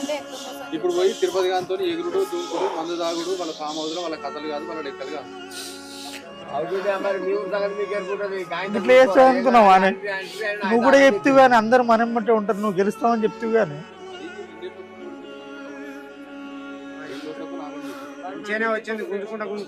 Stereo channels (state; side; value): identical; both; correlation 1.00